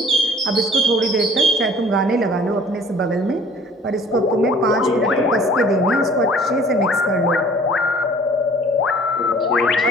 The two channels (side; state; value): both; normal; correlation 0.52